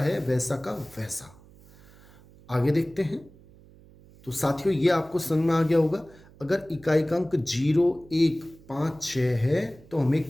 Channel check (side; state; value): right; noise; hum, 24 dB below the sound